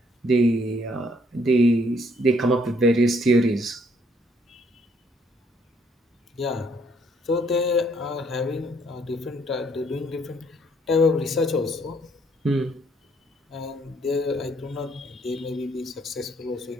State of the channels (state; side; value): normal; both; correlation 0.67